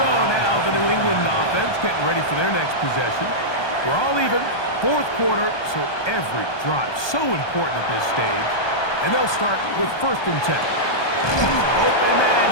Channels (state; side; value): late; right; 1.2 ms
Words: now the New England offense getting ready for their next possession. We're all even. Fourth quarter, so every drive so important at this stage. And they'll start with 1st and 10. Open man